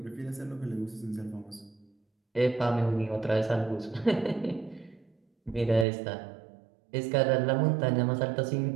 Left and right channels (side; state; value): left; drops out; at 5.9 s